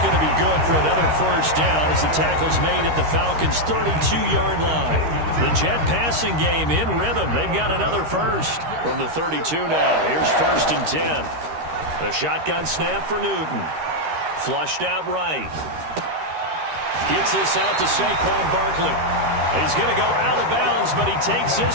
to be good for another first down as the tackle's made at the Falcons' 32-yard line. The Jet passing game in rhythm. They've got another first from the 32 now. Here's 1st and 10. The shotgun snap for Newton. Flushed out right. Gets this out to Saquon Barkley. He's going to go out of bounds, but he takes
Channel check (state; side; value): late; left; 13 ms